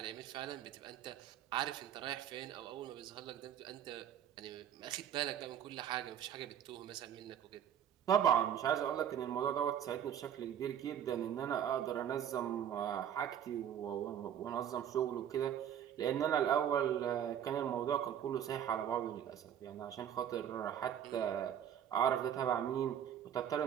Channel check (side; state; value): left; quieter; 9.7 dB